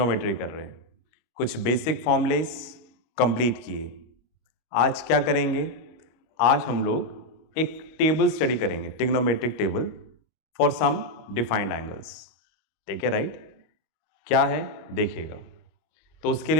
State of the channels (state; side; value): late; right; 25 ms